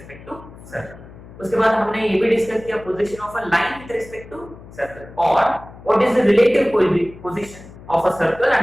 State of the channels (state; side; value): noise; left; hum, 18 dB below the sound